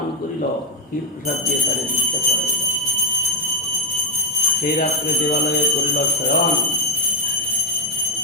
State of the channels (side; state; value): both; normal; correlation 0.03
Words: করিল, ক্ষীর প্রসাদ দিয়ে তারে দীক্ষা করাইল। সেই রাত্রে দেবালয়ে করিল শয়ন,